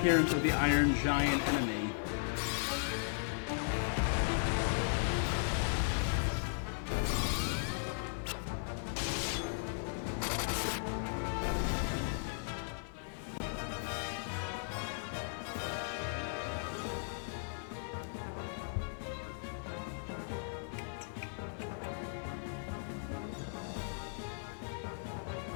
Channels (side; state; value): right; silent; digital silence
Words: of the Iron Giant enemy.